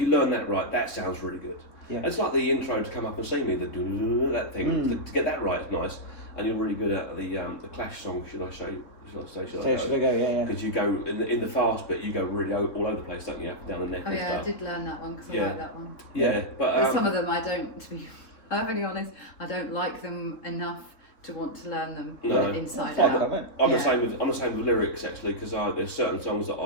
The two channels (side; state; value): right; late; 3.9 ms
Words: learn that right, that sounds really good. It's like the intro to Come Up and See Me, that thing, to get that right is nice. And you're really good at the Clash song, should I say? Should I go? Because you go in the fast bit, you go really all over the place, don't you? Up and down the neck. Oh and yeah, stuff. I did learn that one because I like that one. Yeah, but some of them I don't. To be perfectly honest, I don't like them enough to want to learn them inside out. I'm the same with lyrics actually, because there's certain songs that